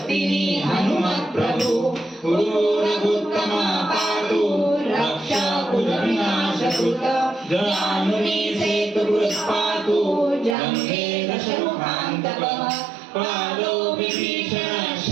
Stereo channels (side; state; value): left; drops out; at 10.6 s